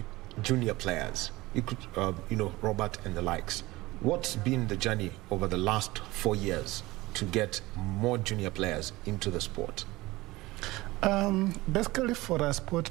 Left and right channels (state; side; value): quieter; left; 19.8 dB